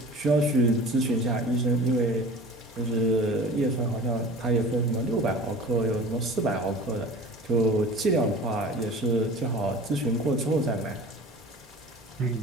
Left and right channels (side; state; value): both; normal; correlation 0.40